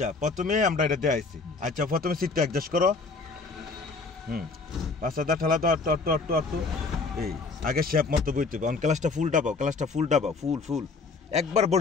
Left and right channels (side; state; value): right; quieter; 4.1 dB